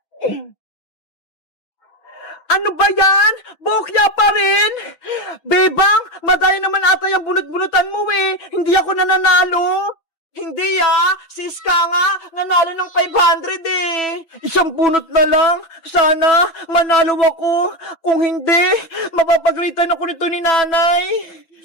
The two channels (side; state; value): right; late; 6.1 ms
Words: Ano ba yan? Bokya pa rin? Bebang, madaya naman ata yung bunot-bunutan mo Hindi ako nananalo. Hindi si Iska nga, nanalo ng 500 Isang bunot na lang. Sana, manalo ako. Kung hindi, mapapagalitan ako nito ni nanay.